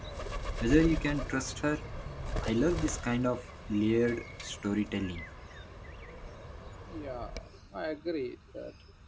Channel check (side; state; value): both; identical; correlation 1.00